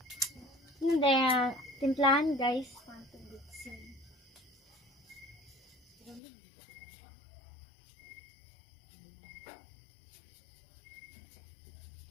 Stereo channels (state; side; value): drops out; right; at 6.2 s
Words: Hindi, timplahan guys.